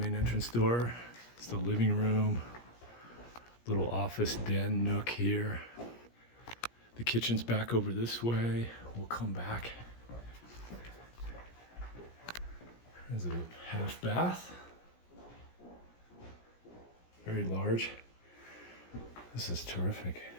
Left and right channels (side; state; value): right; late; 17 ms